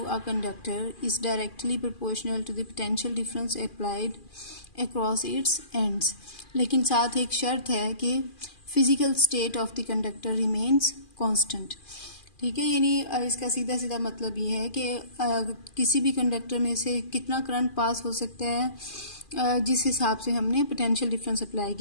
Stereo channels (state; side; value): late; right; 2.4 ms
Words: a conductor is directly proportional to the potential difference applied across its ends। लेकिन साथ एक शर्त है कि physical state of the conductor remains constant। ठीक है, यानी इसका सीधा सीधा मतलब ये है कि किसी भी कंडक्टर में से कितना करंट पास हो सकता है जिस हिसाब से हमने पोटेंशियल डिफरेंस अप्लाई